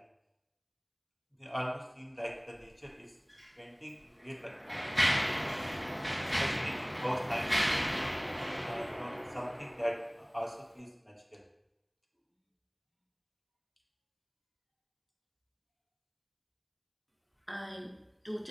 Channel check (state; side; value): identical; both; correlation 1.00